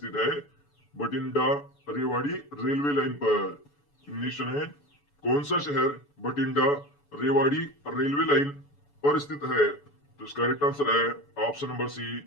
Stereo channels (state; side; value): late; right; 7.0 ms